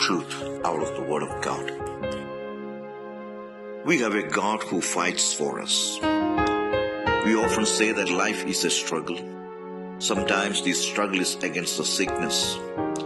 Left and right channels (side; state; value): both; identical; correlation 1.00